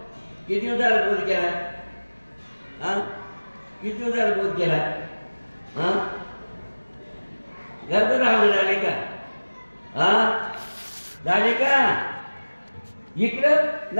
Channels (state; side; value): inverted; both; correlation -1.00